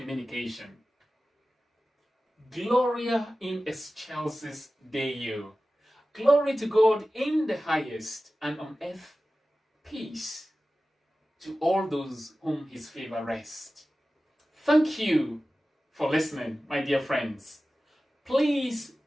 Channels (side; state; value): both; normal; correlation 0.95